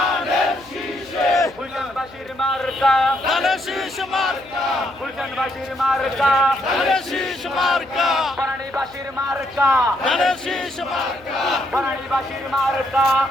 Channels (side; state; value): left; noise; hum, 24 dB below the sound